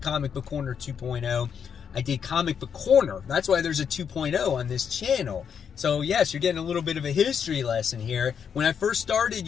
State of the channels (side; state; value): right; quieter; 7.4 dB